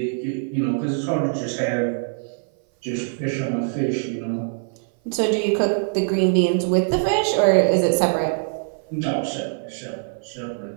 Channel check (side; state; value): left; silent; 57 dB below the other